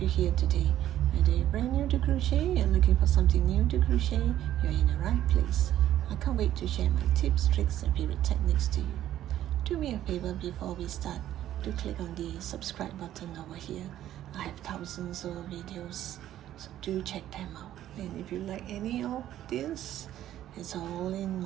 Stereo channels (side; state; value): left; quieter; 12.4 dB